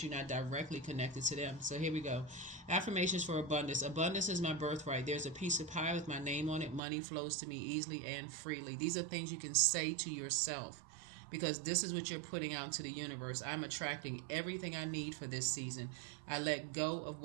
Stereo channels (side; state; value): left; drops out; at 6.8 s